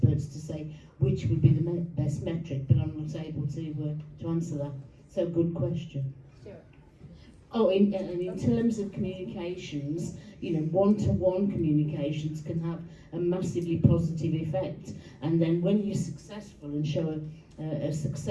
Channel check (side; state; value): both; identical; correlation 1.00